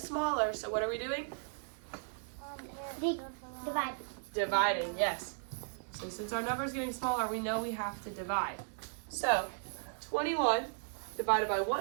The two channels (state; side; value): silent; left; digital silence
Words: so what are we doing? Divide. Dividing, yes. So since our number is getting smaller, we know we have to divide. So 21 divided by